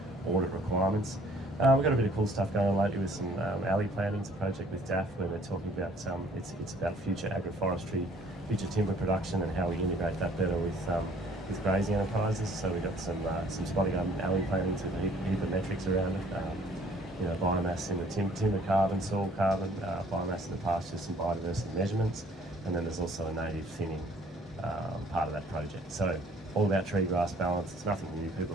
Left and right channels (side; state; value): both; normal; correlation 0.58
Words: audit requirements. We've got a bit of cool stuff going on lately with some alley planting. It's a project with DAF where they're talking about it's about future agroforestry, future timber production, and how we integrate that better with grazing enterprises. So we've got some spotty garden alley planting to heap of metrics around it. Biomass in the timber carbon, soil carbon, biomass in the pasture, some biodiversity measurements, and then there's also a native thinning part of that project. So all about tree grass balance. It's nothing new. People